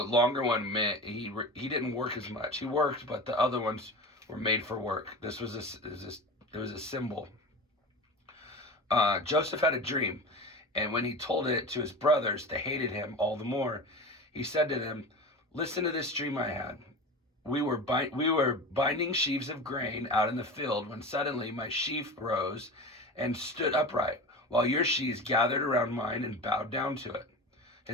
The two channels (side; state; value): both; normal; correlation 0.30